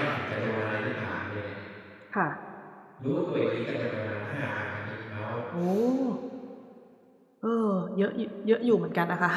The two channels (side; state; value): both; identical; correlation 1.00